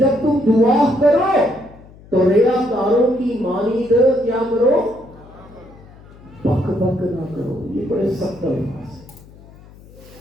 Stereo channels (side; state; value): left; noise; hum, 22 dB below the sound